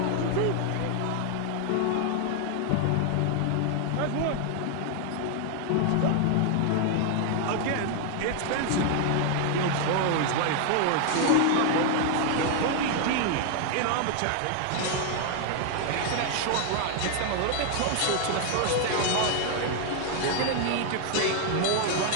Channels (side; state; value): both; different; correlation 0.00